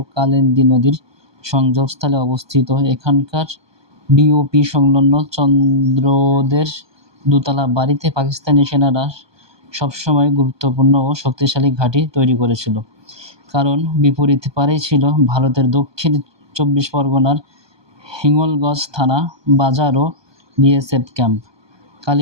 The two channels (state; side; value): late; left; 1.2 ms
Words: কালিন্দী নদীর সংযোগস্থলে অবস্থিত এখানকার বিওপি সংলগ্ন চন্দ্রদের দোতলা বাড়িতে পাকিস্তানি সেনারা সবসময় গুরুত্বপূর্ণ ও শক্তিশালী ঘাঁটি তৈরি করেছিল, কারণ বিপরীত পারেই ছিল ভারতের দক্ষিণ 24 পরগনার হিঙ্গলগঞ্জ থানা বাজার ও বিএসএফ ক্যাম্প।